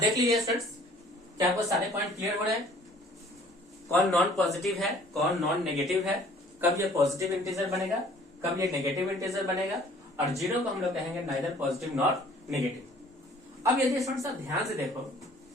लीजिए स्टूडेंट्स, क्या आपको सारे पॉइंट क्लियर हो रहे हैं? कौन नॉन पॉजिटिव है, कौन नॉन नेगेटिव है, कब ये पॉजिटिव इंटीजर बनेगा, कब ये नेगेटिव इंटीजर बनेगा, और जीरो को हम लोग कहेंगे नाइदर पॉजिटिव नॉट नेगेटिव। अब यदि स्टूडेंट्स आप ध्यान से देखो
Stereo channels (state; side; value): normal; both; correlation 0.54